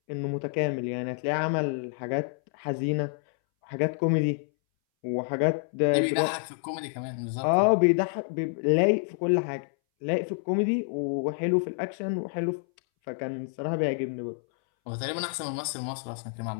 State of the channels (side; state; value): right; silent; 59 dB below the other